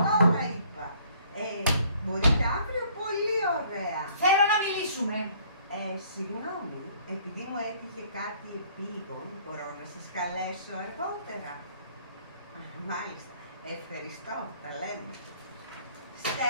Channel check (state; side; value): inverted; both; correlation -0.59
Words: τώρα, είπα. Μπορείτε αύριο, πολύ ωραία. Θέλω να μιλήσουμε. Συγγνώμη, επειδή μου έτυχε κάτι επίγον, μπορώ να σας καλέσω αργότερα? Μάλιστα. Ευχαριστώ, τα λέμε.